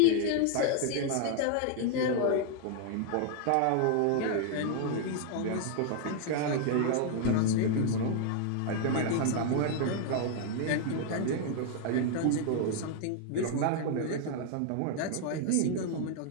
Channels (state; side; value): different; both; correlation 0.00